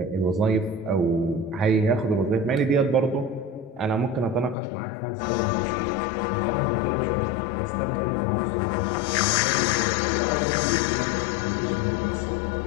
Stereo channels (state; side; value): drops out; right; at 4.5 s